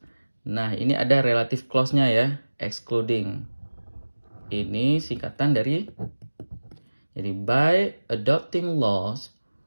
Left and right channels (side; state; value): both; inverted; correlation -1.00